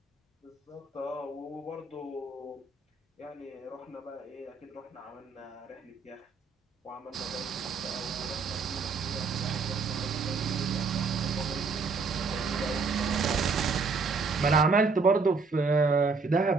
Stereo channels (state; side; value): quieter; left; 4.4 dB